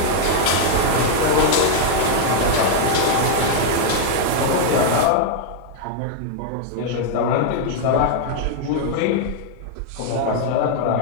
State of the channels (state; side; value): different; both; correlation 0.00